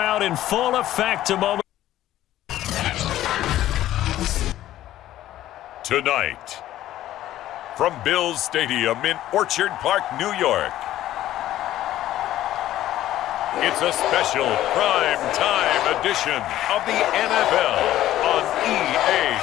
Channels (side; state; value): right; quieter; 13.6 dB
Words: in full effect a moment. Tonight, from Bills Stadium in Orchard Park, New York, it's a special prime time edition of the NFL on EA